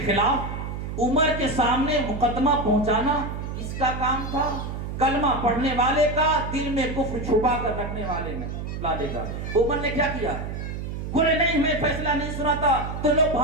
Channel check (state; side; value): noise; right; hum, 6 dB below the sound